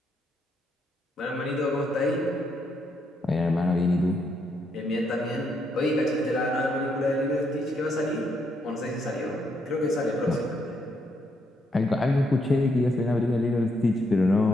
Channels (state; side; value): normal; both; correlation 0.76